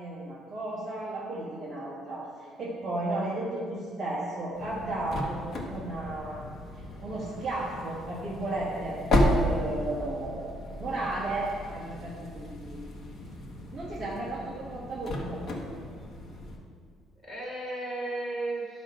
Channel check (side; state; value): both; normal; correlation 0.72